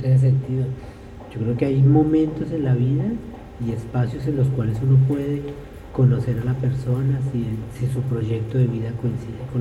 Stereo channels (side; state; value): both; identical; correlation 1.00